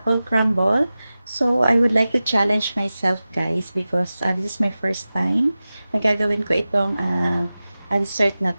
crumble. So, I would like to challenge myself guys because this is my first time na gagawin ko itong dessert na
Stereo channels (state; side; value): inverted; both; correlation -0.96